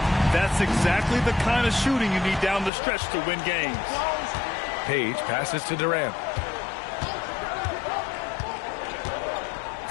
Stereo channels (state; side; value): drops out; right; at 2.7 s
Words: That's exactly the kind of shooting you need down the stretch to win games. Page passes to Durant.